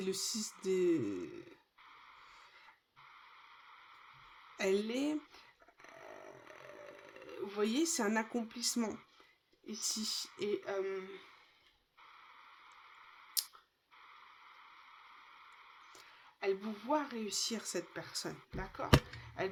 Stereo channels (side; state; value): both; identical; correlation 1.00